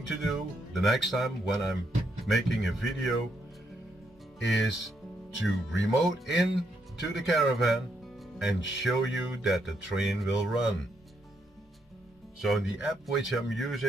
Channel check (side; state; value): both; normal; correlation 0.77